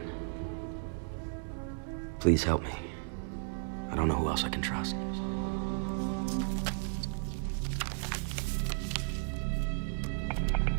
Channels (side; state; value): left; silent; 55 dB below the other